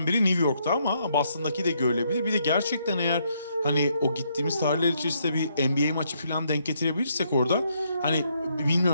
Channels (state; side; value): inverted; both; correlation -0.73